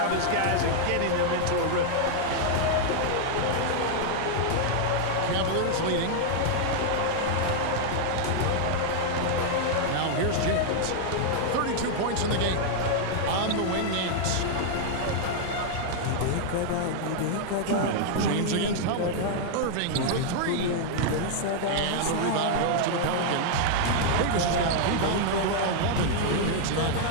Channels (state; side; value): different; both; correlation -0.01